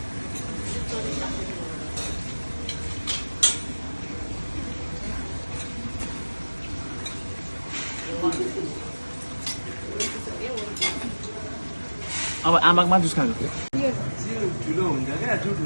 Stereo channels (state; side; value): inverted; both; correlation -1.00